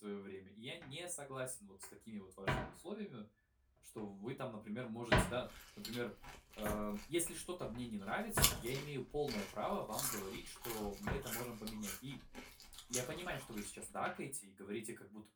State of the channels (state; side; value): identical; both; correlation 1.00